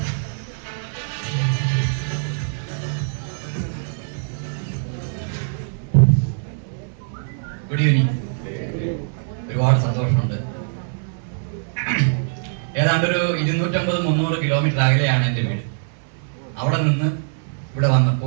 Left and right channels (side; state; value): left; silent; 59 dB below the other